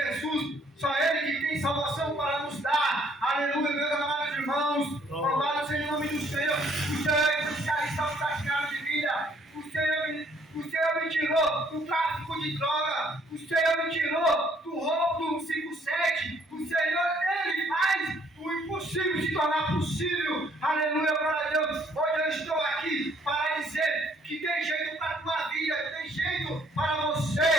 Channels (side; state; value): both; normal; correlation 0.64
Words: só Ele que tem salvação para nos dar, aleluia, meus amados irmãos, louvado seja o nome do Senhor, o Senhor é especialista no praticado de vida, o Senhor me tirou do tráfico de droga, o Senhor me tirou do roubo do 57, o Senhor, Ele faz o impossível se tornar possível, aleluia, glória a Deus, hoje eu estou aqui para dizer que tem jeito para a tua vida, tem jeito para